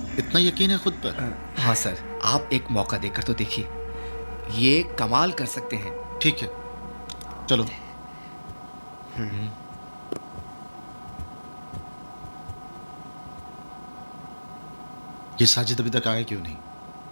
इतना यकीन है खुद पर? हाँ सर, आप एक मौका देकर तो देखिए, ये कमाल कर सकते हैं। ठीक है, चलो। ये साजिद अभी तक आया क्यों नहीं?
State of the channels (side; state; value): both; inverted; correlation -1.00